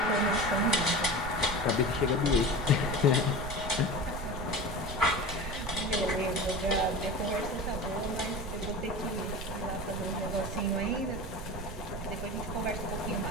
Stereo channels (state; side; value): noise; right; rumble, 8 dB below the sound